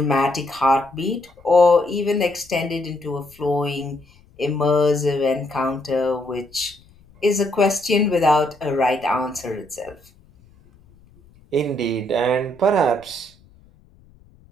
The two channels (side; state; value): left; noise; rumble, 28 dB below the sound